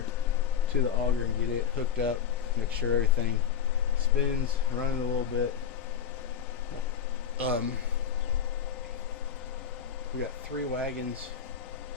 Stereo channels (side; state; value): right; quieter; 7.9 dB